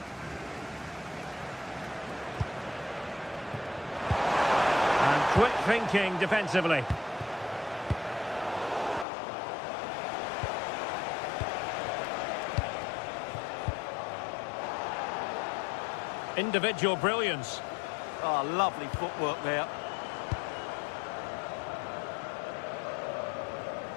And quick thinking defensively. Individual brilliance. Oh, lovely footwork there.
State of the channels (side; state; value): right; drops out; at 9.1 s